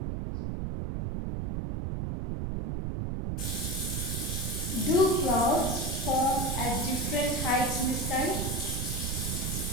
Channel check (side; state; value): right; noise; rumble, 2 dB below the sound